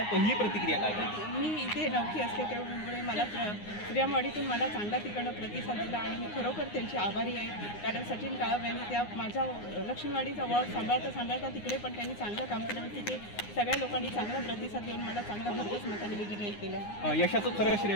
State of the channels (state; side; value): late; right; 9.7 ms